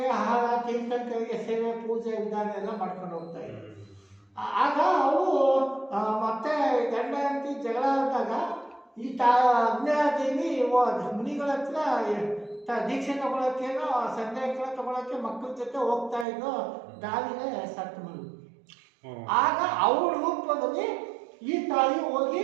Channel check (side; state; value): left; drops out; at 16.2 s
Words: ಆಹಾರ ತೀರ್ಥಂಕರಿಗೆ ಸೇವೆ ಪೂಜೆ ವಿಧಾನ ಎಲ್ಲ ಮಾಡ್ಕೊಂಡು ಹೋಗ್ತಾ ಇದ್ದಾರೆ. ಆಗ ಅವರು ಮತ್ತೆ ಗಂಡ ಅಂತಿ ಜಗಳ ಆದಾಗ ಈ ಅಗ್ನಿದೇವಿ ಮುನಿಗಳ ಹತ್ರ ದೀಕ್ಷೆ ತಗೊಳಕ್ಕೇನೋ ಸಂಧ್ಯಾಕರ ತಗೊಳಕ್ಕೆ ಮಕ್ಕಳ ಜೊತೆ ಹೋಗ್ತಾ ಇದ್ದು ದಾರಿಲೇ ಸತ್ತು ಮರು. ಆಗ ಅವ್ರ ರೂಪದಲ್ಲಿ ಈ ತಾಯಿ ಹೋಗಿ